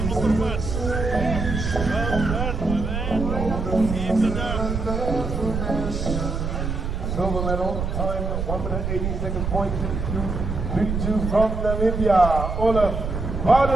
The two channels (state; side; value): noise; right; rumble, 3 dB below the sound